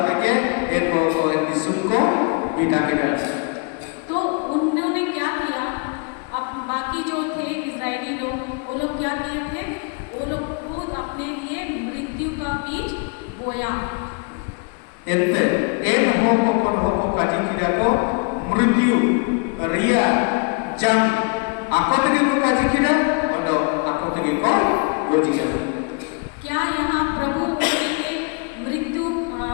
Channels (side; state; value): right; quieter; 36.6 dB